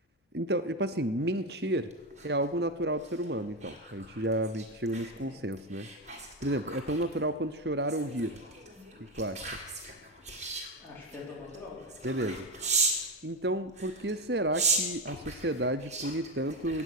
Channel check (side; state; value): both; normal; correlation 0.13